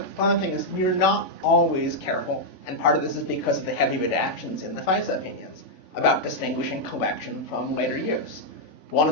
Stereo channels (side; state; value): right; late; 3.5 ms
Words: fun thing is we're not always careful, and part of this is because of the heavy redactions in the FISA opinions about distinguishing collection from later use. One